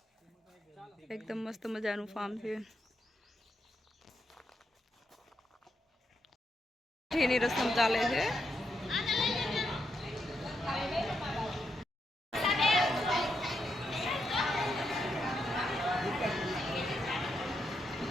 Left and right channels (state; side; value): normal; both; correlation 0.82